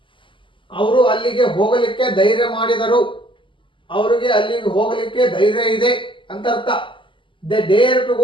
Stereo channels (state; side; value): late; right; 0.25 ms